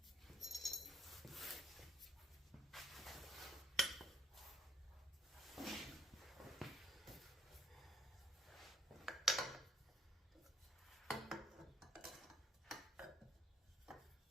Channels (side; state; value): both; normal; correlation 0.66